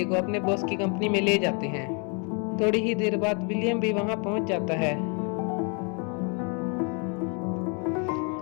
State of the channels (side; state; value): right; quieter; 35.7 dB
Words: को अपने बॉस की कंपनी में ले जाते हैं। थोड़ी ही देर बाद विलियम भी वहां पहुंच जाता है।